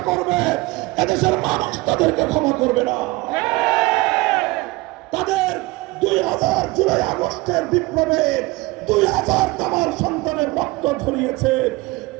করবে, এদেশের মানুষ তাদেরকে ক্ষমা করবে না। তাদের 2000 জুলাই আগস্টের বিপ্লবে 2000 তামার সন্তানের রক্ত ঝরিয়েছে,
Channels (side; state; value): left; quieter; 22.0 dB